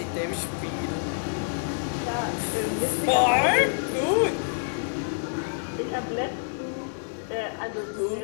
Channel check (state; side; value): silent; right; digital silence